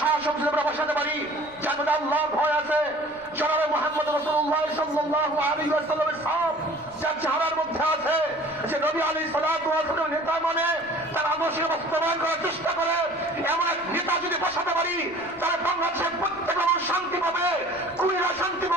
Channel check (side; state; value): right; noise; rumble, 27 dB below the sound